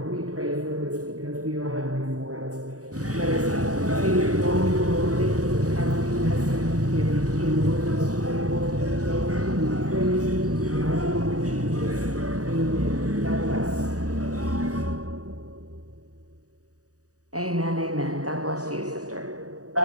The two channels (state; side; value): late; left; 0.66 ms